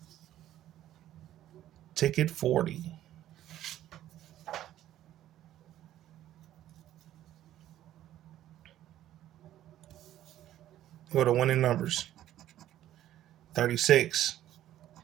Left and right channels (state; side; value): quieter; left; 12.7 dB